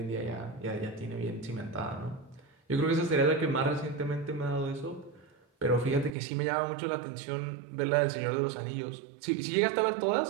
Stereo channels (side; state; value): left; drops out; at 6.1 s